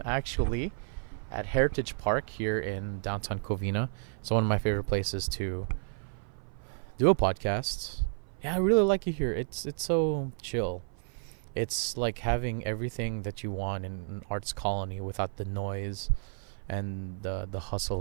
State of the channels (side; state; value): left; silent; 55 dB below the other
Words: actually at Heritage Park here in downtown Covina. It's one of my favorite places to do a podcast. Yeah, I really like it here. It's so chill. It's like having everything that you want in an arts colony without the noise and the